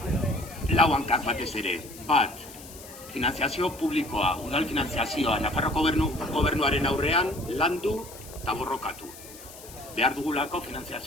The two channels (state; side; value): noise; left; hiss, 17 dB below the sound